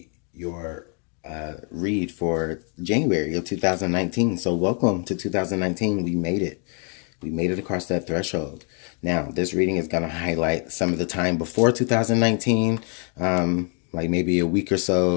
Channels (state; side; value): quieter; right; 39.4 dB